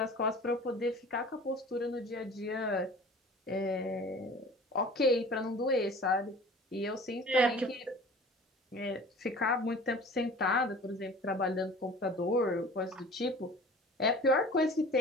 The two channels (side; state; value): both; normal; correlation 0.43